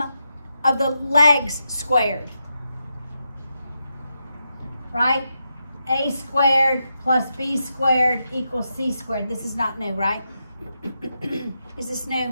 of the legs squared. Right? A squared plus B squared equals C squared. This is not new, right? Is this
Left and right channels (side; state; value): both; inverted; correlation -0.85